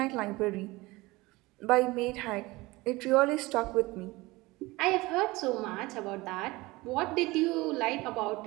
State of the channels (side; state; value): left; quieter; 21.4 dB